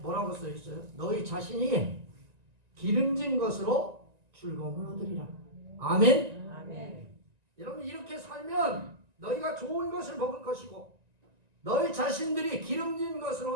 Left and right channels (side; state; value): left; late; 1.9 ms